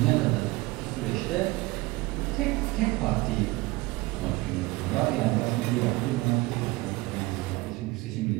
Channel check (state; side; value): quieter; left; 21.5 dB